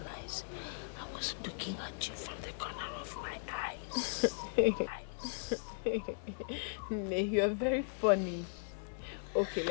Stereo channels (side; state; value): right; silent; 53 dB below the other